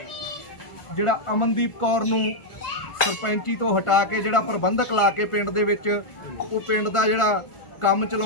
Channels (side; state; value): right; late; 1.4 ms